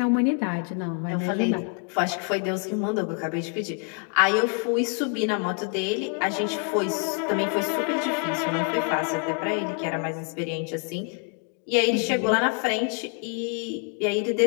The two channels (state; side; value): quieter; right; 39.1 dB